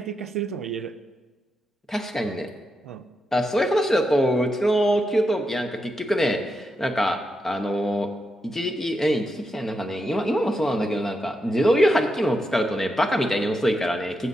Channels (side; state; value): both; normal; correlation 0.85